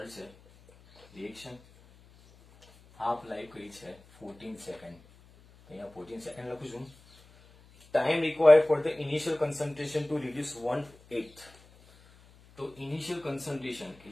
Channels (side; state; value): left; noise; hum, 26 dB below the sound